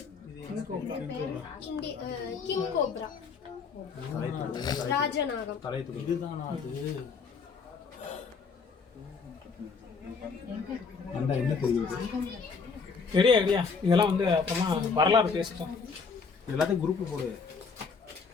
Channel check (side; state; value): right; quieter; 5.2 dB